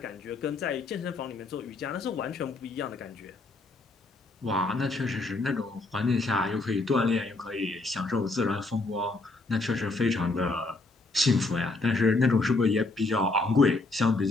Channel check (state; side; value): quieter; right; 3.2 dB